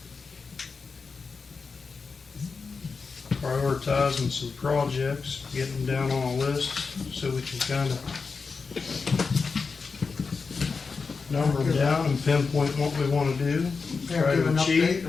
Prioritizing some projects, getting them down on a list so we can kind of number them down and pinpoint what we want to do, try to achieve.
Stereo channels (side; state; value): right; quieter; 4.8 dB